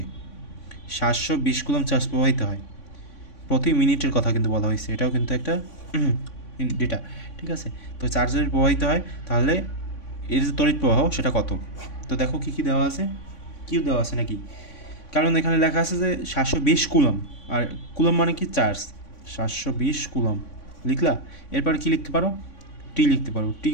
720 কুলম চার্জ প্রবাহিত হয়, প্রতি মিনিটের কথা কিন্তু বলা হয়েছে, এটাও কিন্তু একটা ডেটা, ঠিক আছে? তো চার্জ যদি প্রবাহিত হয় তাহলে এর যে তড়িৎ প্রবাহ সেটা কত? তো দেখো কী কী দেওয়া আছে, কিউ দেওয়া আছে নাকি? কারণ এখানে লেখা আছে যে 720 কুলম, আর কুলম মানে কি? চার্জ। 720 কুলম লিখলা, এরপর কি লিখতে পারো? টি লিখতে পারো। টি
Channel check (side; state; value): right; late; 3.5 ms